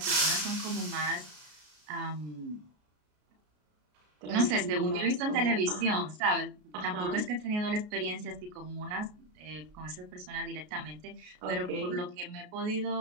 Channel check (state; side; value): late; left; 33 ms